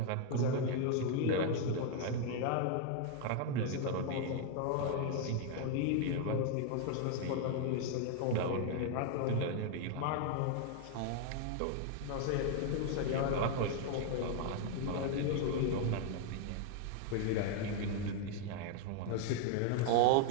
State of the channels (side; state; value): both; different; correlation 0.00